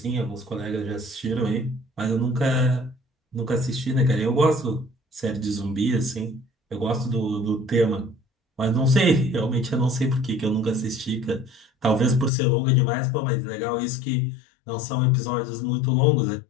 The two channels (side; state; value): right; drops out; at 12.3 s